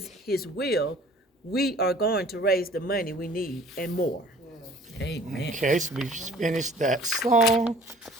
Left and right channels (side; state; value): both; normal; correlation 0.51